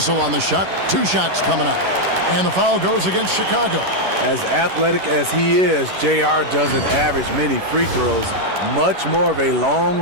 on the shot. 2 shots coming up. And the foul goes against Chicago. As athletic as he is, JR doesn't average many free throws. Much more of a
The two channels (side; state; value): left; late; 11 ms